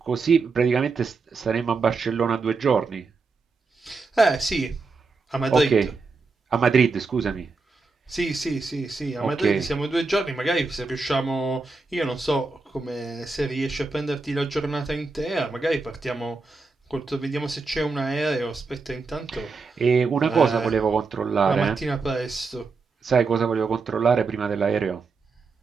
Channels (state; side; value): quieter; left; 4.2 dB